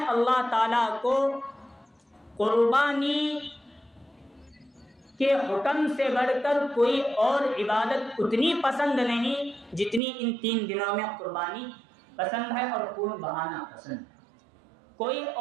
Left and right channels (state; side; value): drops out; left; at 10.0 s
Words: اللہ تعالیٰ کو قربانی کے حکم سے بڑھ کر کوئی اور عبادت اتنی پسند نہیں جتنی ان 3 دنوں میں قربانی پسند ہے اور خون بہانا پسند ہے. کوئی